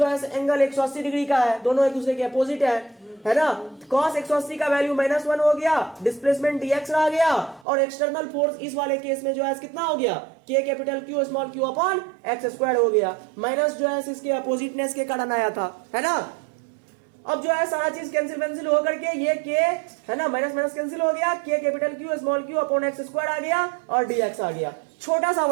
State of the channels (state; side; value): drops out; left; at 7.7 s